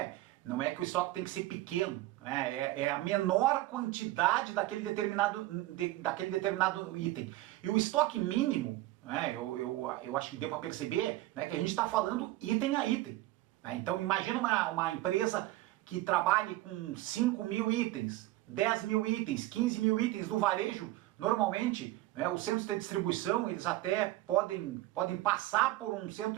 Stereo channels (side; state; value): left; quieter; 17.2 dB